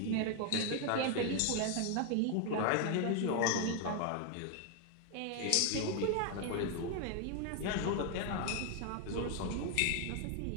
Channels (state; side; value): different; both; correlation 0.01